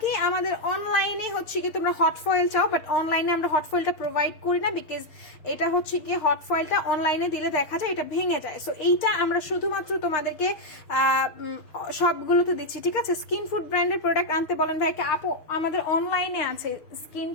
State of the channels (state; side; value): late; right; 6.4 ms